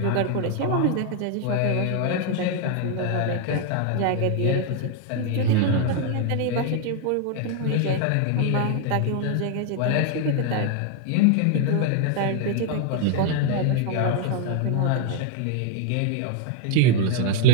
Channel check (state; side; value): different; both; correlation 0.00